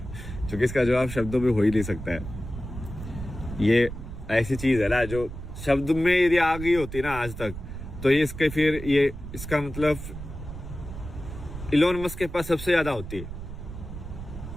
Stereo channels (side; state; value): right; noise; rumble, 10 dB below the sound